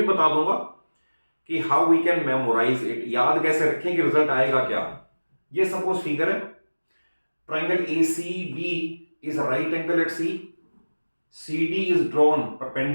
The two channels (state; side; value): inverted; both; correlation -1.00